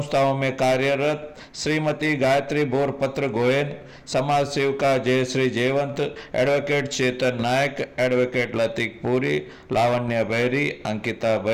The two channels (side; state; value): both; identical; correlation 1.00